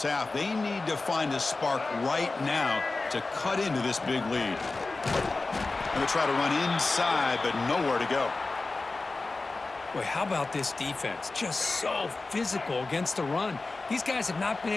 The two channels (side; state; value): right; quieter; 3.5 dB